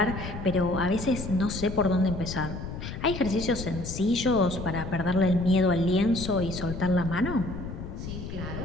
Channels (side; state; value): left; noise; rumble, 8 dB below the sound